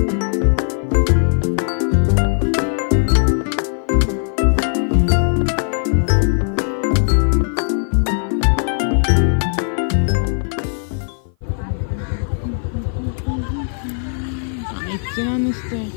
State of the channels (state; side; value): silent; right; 57 dB below the other